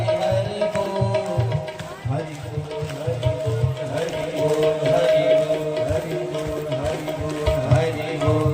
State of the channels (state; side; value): identical; both; correlation 1.00